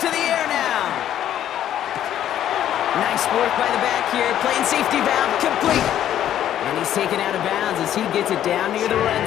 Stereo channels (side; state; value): right; quieter; 11.2 dB